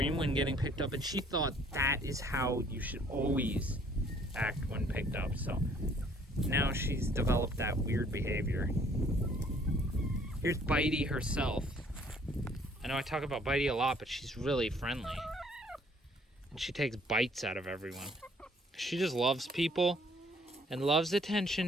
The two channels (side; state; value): both; normal; correlation 0.60